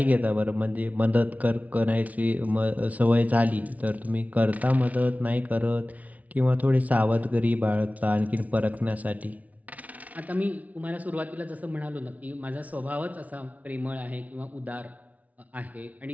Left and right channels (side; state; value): left; late; 0.071 ms